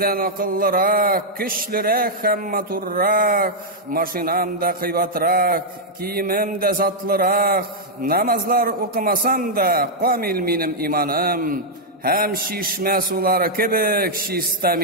akıllırak, güçlürek hem maturrak, maşinam da kıybatrak, kiyimim de zatlırak, namazlar okumasam da kamil minim imanım, hem şişme suları kibik şista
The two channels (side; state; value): both; normal; correlation -0.05